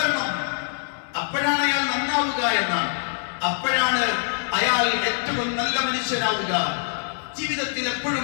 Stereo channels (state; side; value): silent; right; digital silence